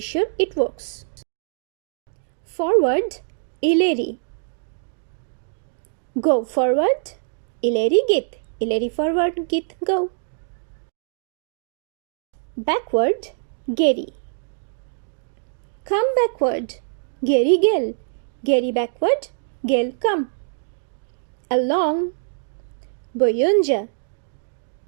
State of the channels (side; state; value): left; silent; digital silence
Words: It works. Forward ileri. Go forward ileri git. İleri forward git go. Backward geri. Come backward geri gel. Geri backward gel come. Along boyunca.